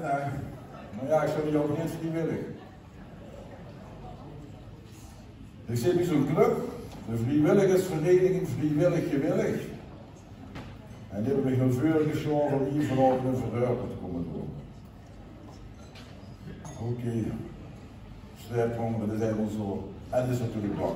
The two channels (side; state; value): both; identical; correlation 1.00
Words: Maar ja, ik zou die ook niet vrijwillig. Ik zit bij zo'n club, de vrijwilligersvereniging Vrijwillig Gewillig. En die hebben me heel veel geschoven om hier vanavond een verhuipen te komen doen. Oké. Strijdhonger, dat zijn wel zo. En dat is natuurlijk bang.